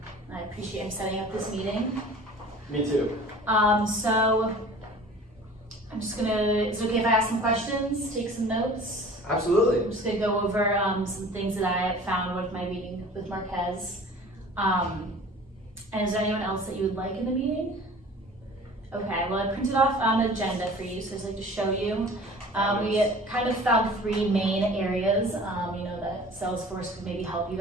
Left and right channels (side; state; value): both; normal; correlation 0.44